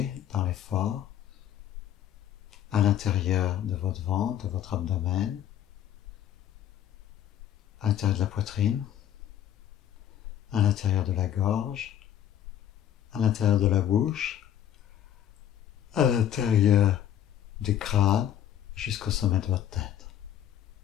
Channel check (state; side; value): quieter; right; 10.4 dB